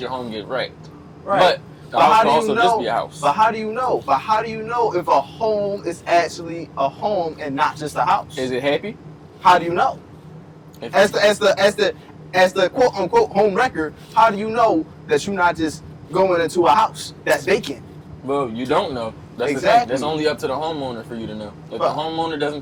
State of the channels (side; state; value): both; identical; correlation 1.00